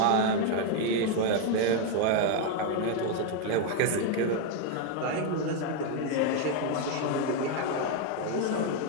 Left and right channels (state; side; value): different; both; correlation 0.01